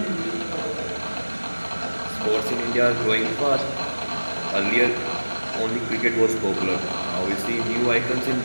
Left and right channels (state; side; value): inverted; both; correlation -1.00